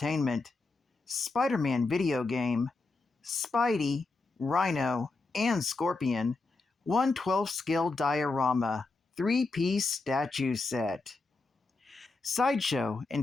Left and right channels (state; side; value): quieter; right; 3.6 dB